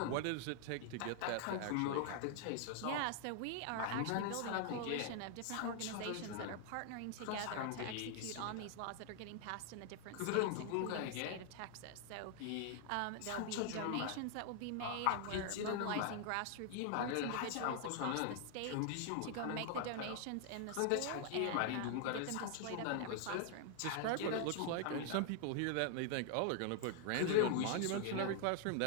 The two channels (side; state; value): both; different; correlation 0.00